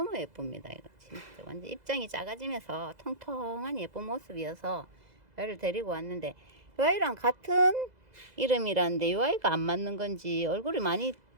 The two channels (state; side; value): late; left; 2.0 ms